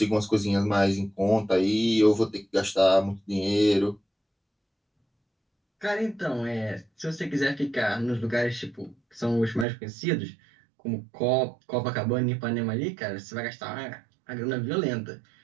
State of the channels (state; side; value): drops out; left; at 9.7 s